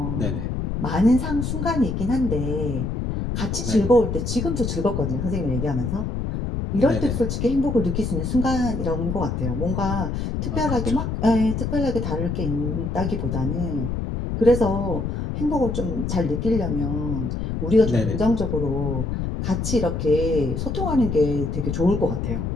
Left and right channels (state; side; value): noise; left; rumble, 2 dB below the sound